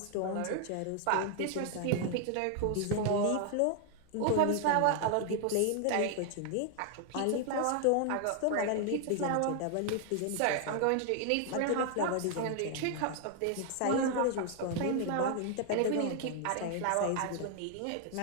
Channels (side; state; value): both; different; correlation 0.00